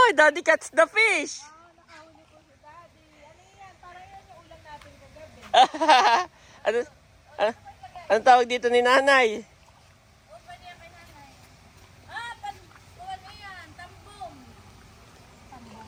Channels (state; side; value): identical; both; correlation 1.00